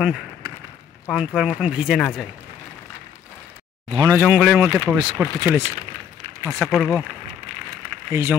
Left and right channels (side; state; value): right; quieter; 8.4 dB